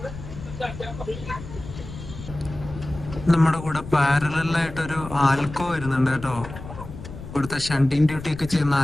നമ്മുടെ കൂടെ പാരലായിട്ടൊരു ആൽക്കോ വരുന്നുണ്ട് കേട്ടോ. ഇവിടുത്തെ ഷണ്ടിങ് ഡ്യൂട്ടി ഒക്കെ ചെയ്യുന്ന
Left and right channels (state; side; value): noise; left; rumble, 12 dB below the sound